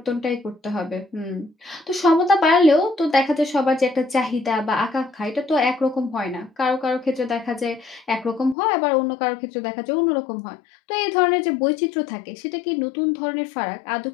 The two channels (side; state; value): right; drops out; at 8.6 s